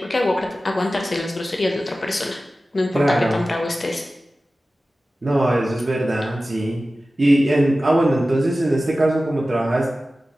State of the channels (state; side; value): normal; both; correlation 0.95